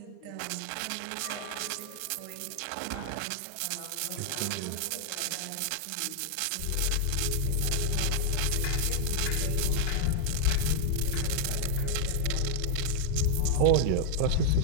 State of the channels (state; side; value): different; both; correlation 0.00